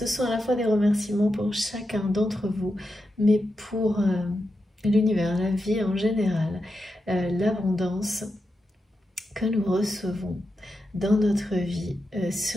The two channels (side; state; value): both; normal; correlation 0.88